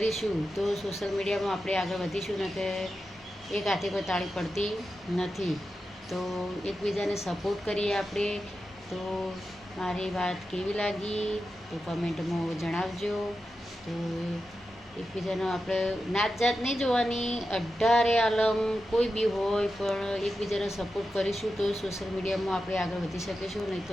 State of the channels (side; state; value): both; normal; correlation 0.90